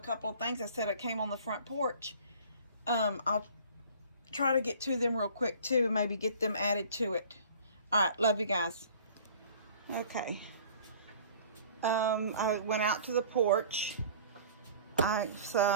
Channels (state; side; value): inverted; both; correlation -0.48